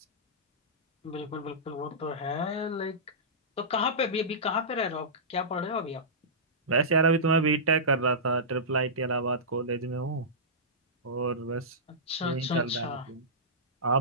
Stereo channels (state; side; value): normal; both; correlation -0.18